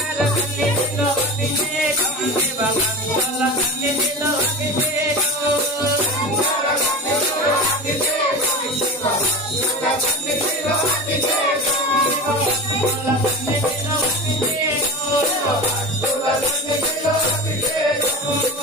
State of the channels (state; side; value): normal; both; correlation 0.29